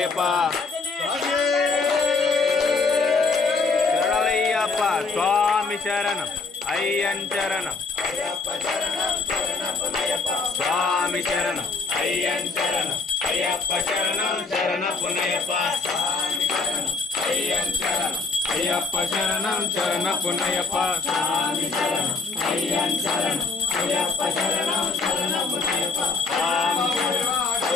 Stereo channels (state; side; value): quieter; right; 4.3 dB